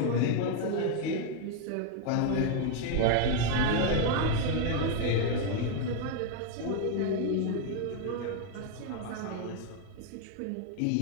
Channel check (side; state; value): both; different; correlation 0.00